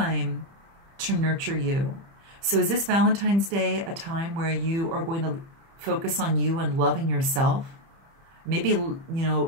to nurture you. So is this Valentine's Day a time where you are going to focus on you and loving yourself? Maybe, you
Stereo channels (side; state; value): left; late; 30 ms